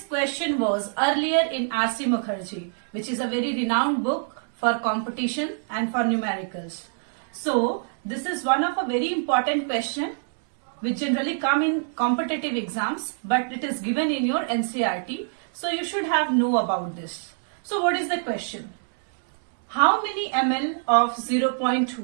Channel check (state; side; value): silent; left; digital silence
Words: question was earlier in R.C. Mukherjee, which is a very renowned book for competition and for numericals. So this is one of a very important question which generally come in competitive exams, but it is given in your NCERT, so you should have know about this. So what is the question? How many ml of